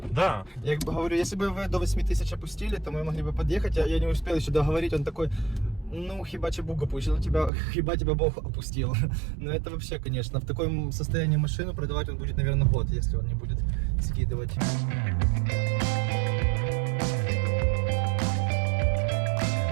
Да. Я как бы говорю, если бы вы до 8000 опустили, то мы могли бы подъехать, я не успел еще договорить, он такой, ну, хиба тебе Бог опустил, хиба тебя Бог опустил. Но это вообще, конечно, в таком состоянии машину продавать он будет, наверное, год, если он не будет скидывать.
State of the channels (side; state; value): left; drops out; at 7.5 s